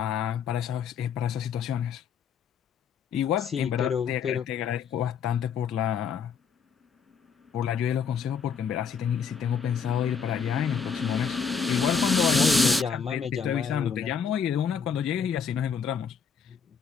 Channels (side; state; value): right; quieter; 6.5 dB